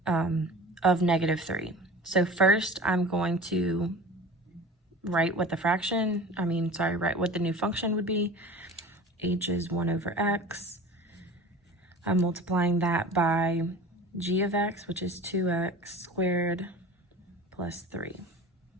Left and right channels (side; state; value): both; normal; correlation 0.38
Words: of negative 3. So first I'm going to write what the write what the new function would be. H is 1 over x. I'm multiplying that by g of x, which is 2x squared plus 3.